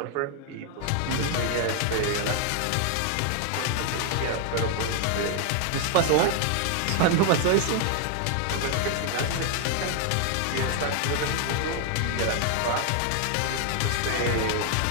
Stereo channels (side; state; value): both; different; correlation 0.00